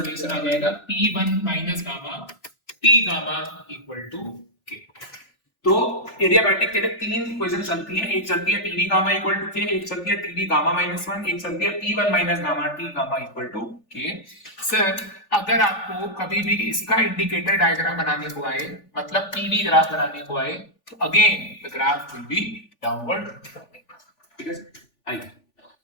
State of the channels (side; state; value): right; late; 3.4 ms